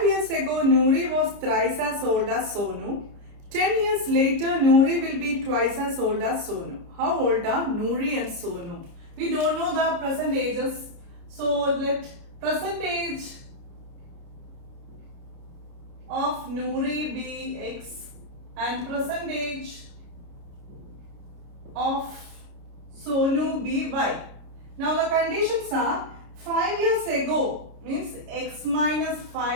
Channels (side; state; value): left; late; 29 ms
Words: years ago, Noori was thrice as old as Sonu. 10 years later, Noori will be twice as old as Sonu. How old are Noori and Sonu? We don't know the present ages, so let present age of Noori be x and present age of Sonu be y. Now the conditions are 5 years ago means x minus